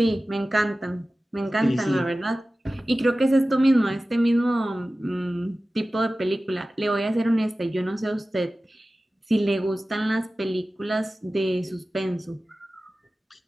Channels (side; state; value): both; normal; correlation 0.96